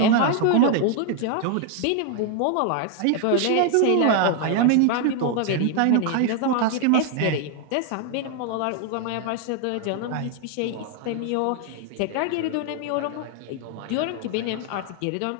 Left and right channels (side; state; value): both; different; correlation 0.00